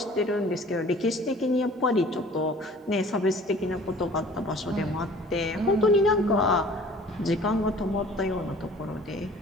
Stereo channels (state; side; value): normal; both; correlation 0.49